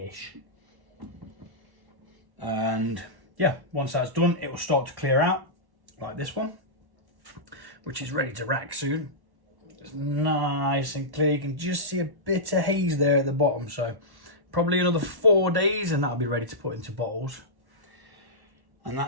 And yeah, once that's done, it will start to clear out, like this one, which is ready to rack soon. It's nice and clear. You can just see a bit of haze there at the bottom, so probably another 4 days and that'll be ready to put into bottles. And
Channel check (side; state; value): left; late; 1.1 ms